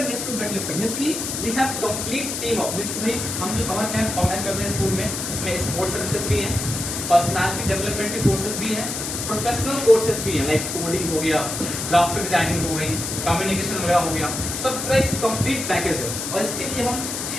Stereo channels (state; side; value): noise; left; hiss, 4 dB below the sound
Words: weightlifter. Means की we have complete team of this. हम जो समर कैंप ऑर्गेनाइज करते हैं स्कूल में, इसमें स्पोर्ट्स सर्विसेज भी हैं, पर्सनालिटी डेवलपमेंट के कोर्सेज भी हैं, प्रोफेशनल कोर्सेज भी हैं, लाइक कोडिंग हो गया, ग्राफिक डिजाइनिंग हो गई, कम्युनिकेशन वगैरह हो गया, सब का एक कंप्लीट पैकेज है और इसके लिए हम